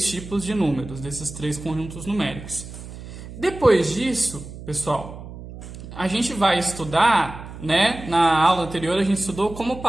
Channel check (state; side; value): noise; right; hum, 13 dB below the sound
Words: tipos de números, desses três conjuntos numéricos. Depois disso, pessoal, a gente vai estudar, na aula anterior a gente estudou como